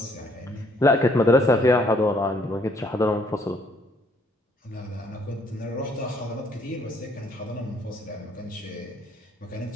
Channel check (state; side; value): normal; both; correlation 0.65